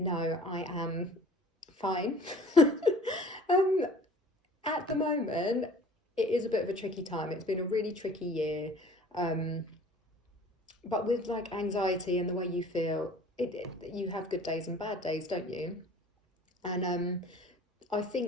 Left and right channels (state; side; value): normal; both; correlation 0.48